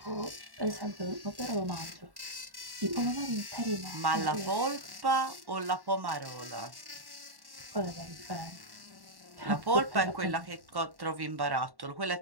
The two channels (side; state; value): left; late; 1.1 ms